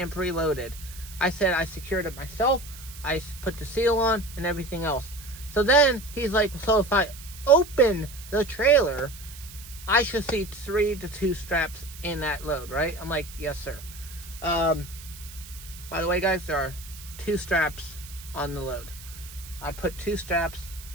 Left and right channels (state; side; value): noise; right; hiss, 16 dB below the sound